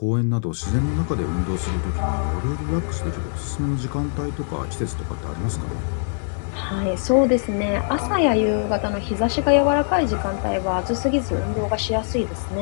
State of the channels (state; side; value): silent; right; 58 dB below the other